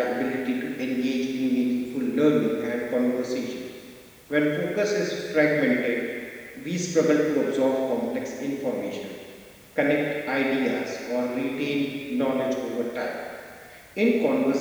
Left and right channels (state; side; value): identical; both; correlation 1.00